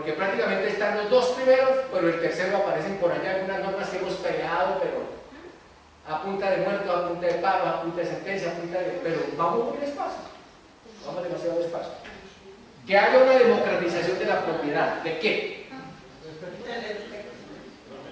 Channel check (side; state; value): both; identical; correlation 1.00